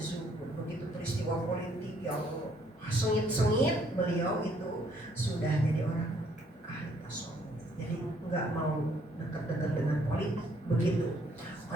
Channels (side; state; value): both; normal; correlation 0.66